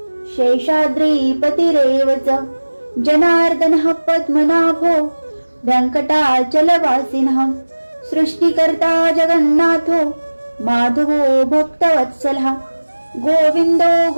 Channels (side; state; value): both; inverted; correlation -1.00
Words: शेषाद्रिपतिरेव च जनार्दनः पद्मनाभो वेङ्कटाचलवासिनः सृष्टिकर्ता जगन्नाथो माधवो भक्तवत्सलः गोविन्दो